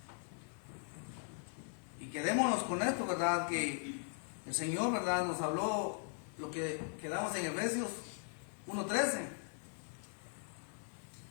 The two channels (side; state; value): right; silent; 51 dB below the other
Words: Y quedémonos con esto, ¿verdad?, que el Señor, ¿verdad?, nos habló lo que quedamos en Efesios 1:13.